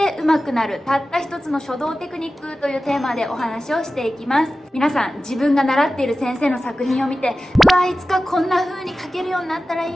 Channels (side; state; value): both; normal; correlation 0.95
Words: 上手くなるたった一つの書道テクニックというテーマでお話をしていきます。皆さん自分が習っている先生の作品を見て、うわいつかこんな風に書けるようになったら